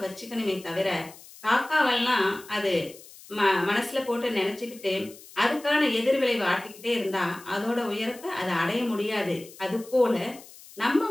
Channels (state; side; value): noise; left; hiss, 20 dB below the sound